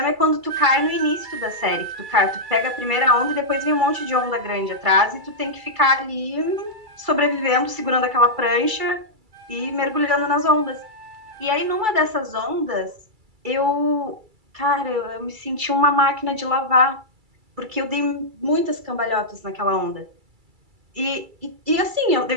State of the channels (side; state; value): left; late; 2.3 ms